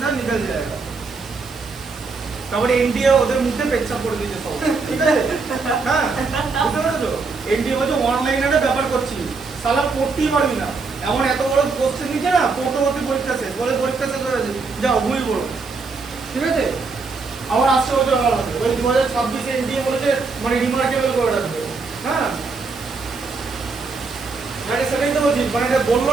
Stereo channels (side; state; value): left; quieter; 4.4 dB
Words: निकल जाएगा তারপরে এনডিএ ওদের মুখে পেচ্ছাপ করে দিয়েছে সব ঠিক আছে হ্যাঁ বুঝতে পেরেছো এনডিএ বলছে ওয়ান লাইনারে ব্যাপার করছি সালা পড়তেই পারবি না এমন এত বড় কোশ্চেন নিচ্ছে না পড়তে পরীক্ষা শেষ বলে পরীক্ষা শেষ হয়ে গেছে যাও ঘুমিয়ে পড়ো ঠিক আছে আবার আসছে বছর আবার আসবে ওই 2026 এনডিএ বলেছে মানে রিমার্কেবল করে রাখবে হ্যাঁ মানে সেটাই তো বলছি মানে এটা